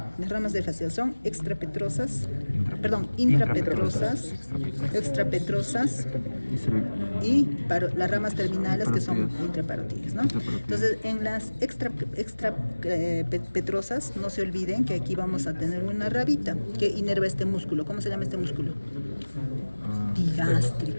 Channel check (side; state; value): both; inverted; correlation -1.00